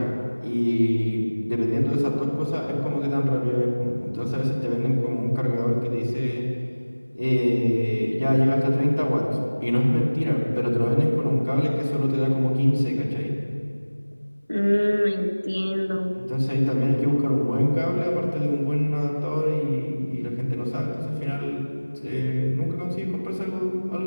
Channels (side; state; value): both; inverted; correlation -1.00